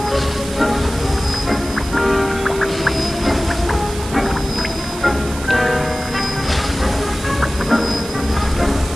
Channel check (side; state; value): right; noise; hiss, 12 dB below the sound